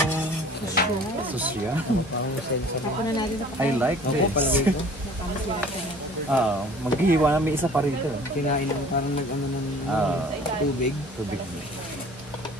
Susya. Parang may sensor. Ako na natin sa I like Ako, this. palagay ko. Maghihiwa na may isa pa rito. Kinain ng parang nag-ano ng tubig. Tubig.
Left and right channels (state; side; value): normal; both; correlation 0.49